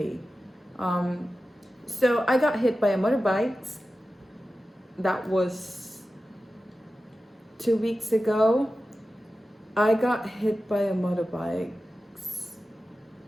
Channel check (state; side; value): normal; both; correlation 0.93